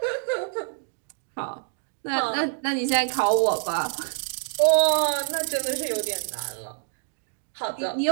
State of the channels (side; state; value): left; silent; digital silence